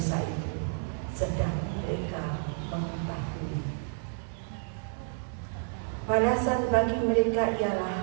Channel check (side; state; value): left; silent; 56 dB below the other